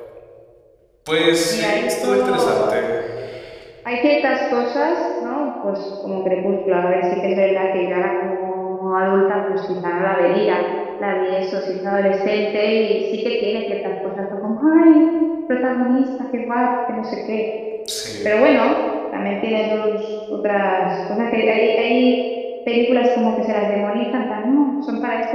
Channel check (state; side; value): identical; both; correlation 1.00